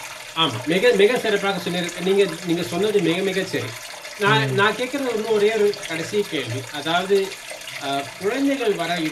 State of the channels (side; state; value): both; identical; correlation 1.00